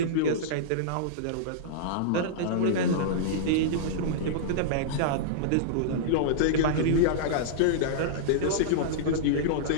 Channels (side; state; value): both; different; correlation -0.02